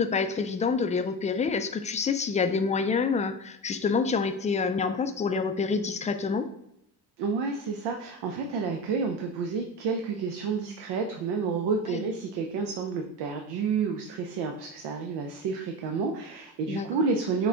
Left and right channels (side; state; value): both; normal; correlation 0.24